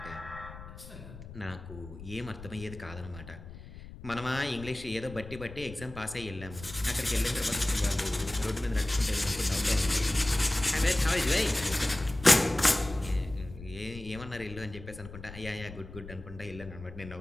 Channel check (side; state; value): left; noise; rumble, 14 dB below the sound